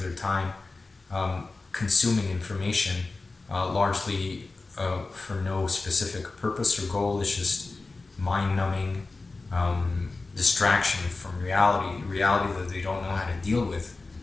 their time consuming information, largely for no specific purpose or goal. It's just mind-numbing distraction from reality that they don't know how to deal with.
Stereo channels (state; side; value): quieter; right; 3.6 dB